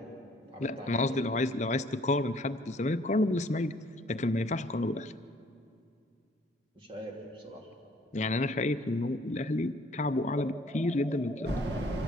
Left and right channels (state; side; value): normal; both; correlation 0.60